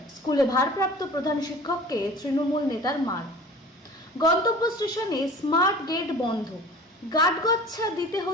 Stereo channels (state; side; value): normal; both; correlation 0.42